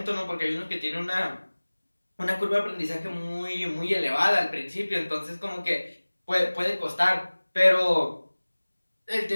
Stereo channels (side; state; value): both; inverted; correlation -1.00